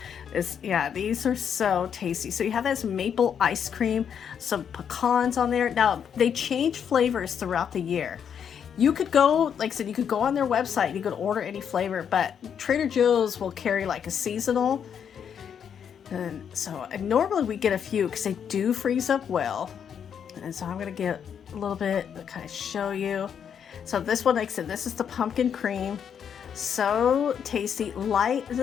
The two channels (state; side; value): quieter; right; 7.9 dB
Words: are so tasty. So you have this maple ice cream, some pecans on there. Now, they change flavors throughout the year. You could go, like I said, you could go on their website, you could order any flavor, but Trader Joe's will carry like a seasonal. And normally we get a few because they do freeze up well. And so I'm going to get a little bit to kind of show you. So this one, like I said, this is the pumpkin cream. So tasty, light. It